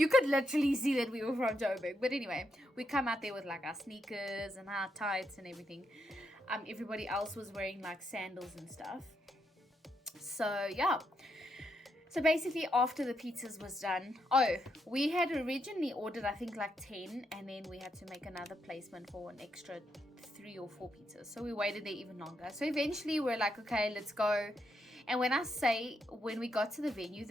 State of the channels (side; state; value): both; normal; correlation 0.80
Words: could literally see that we were from Joburg. But anyway, we come out there with like our sneakers and our tights and everything. Everybody else was wearing like sandals and stuff. So yeah. So basically after the pizzas was done, we had originally ordered I think like 10, and then we had to make another placement for an extra 3 or 4 pizzas. So we waited there even longer. So eventually we're like, okay, let's go. And when we got to the